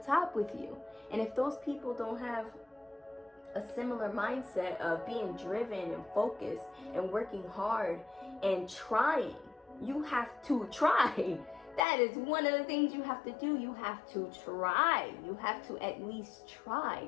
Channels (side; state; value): right; drops out; at 11.8 s